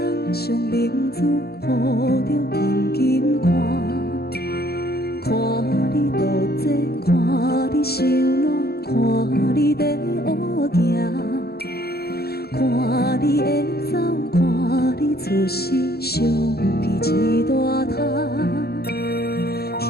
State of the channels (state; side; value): late; right; 0.46 ms